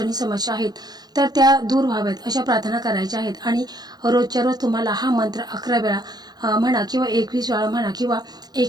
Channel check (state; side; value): late; left; 0.19 ms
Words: समस्या आहेत तर त्या दूर व्हाव्यात अशा प्रार्थना करायच्या आहेत। आणि रोजच्या रोज तुम्हाला हा मंत्र 11 वेळा म्हणा किंवा 21 वेळा म्हणा किंवा